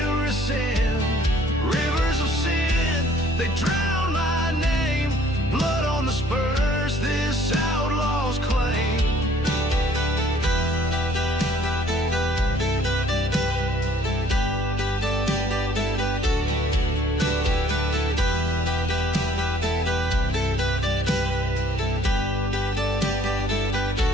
rescind. Rivers of sin, they drown my name. Blood on the spurs, this outlaw's claim.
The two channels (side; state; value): both; normal; correlation 0.59